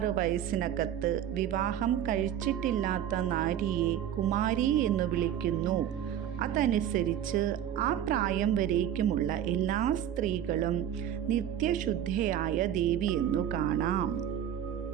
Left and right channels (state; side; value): quieter; left; 10.2 dB